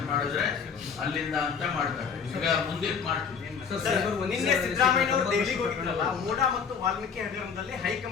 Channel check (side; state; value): right; quieter; 6.4 dB